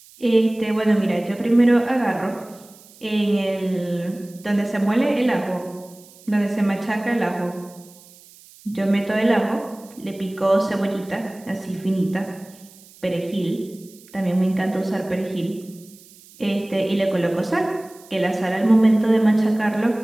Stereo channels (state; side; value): noise; right; hiss, 24 dB below the sound